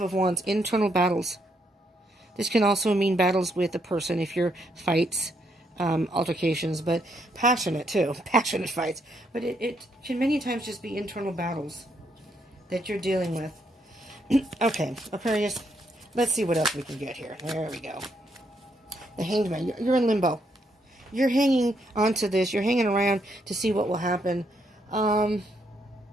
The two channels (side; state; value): both; normal; correlation 0.75